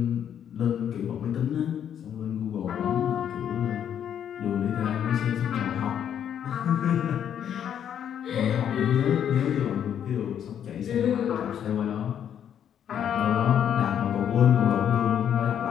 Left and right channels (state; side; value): quieter; right; 9.3 dB